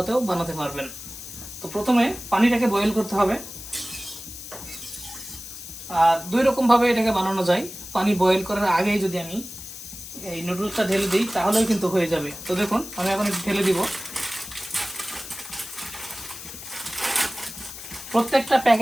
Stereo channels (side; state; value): left; noise; hiss, 12 dB below the sound